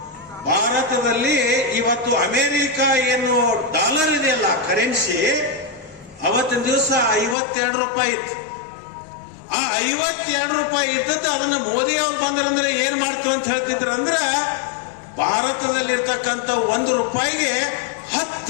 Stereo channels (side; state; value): right; drops out; at 7.4 s